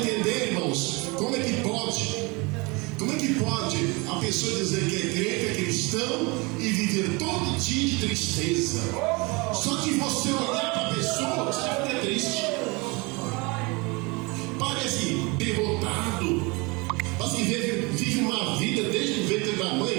irmãos. Como é que pode? Como é que pode a pessoa dizer que é crente, é cristão e viver todo dia de tristeza? Só que você olhar para a pessoa, você fica triste. Parece derrotado. Parece que vive uma vida desde o ventre da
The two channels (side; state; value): left; quieter; 27.1 dB